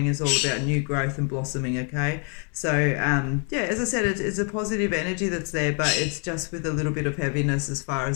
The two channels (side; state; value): right; quieter; 39.8 dB